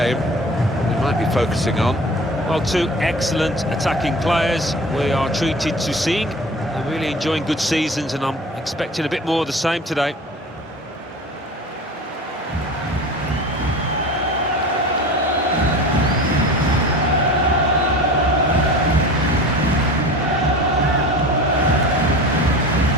we might be focusing on. Well, two excellent attacking players we are treated to seeing. They're really enjoying good seasons, and I'm expecting a bit more of the same today.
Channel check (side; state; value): both; normal; correlation 0.37